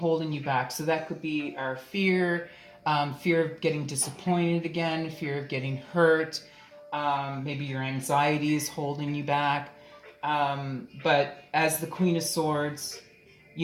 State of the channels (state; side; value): identical; both; correlation 1.00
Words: you back. So that could be our fear, fear of getting disappointed again, fear of getting hurt. Maybe your anxiety is holding you back. But as the Queen of Swords,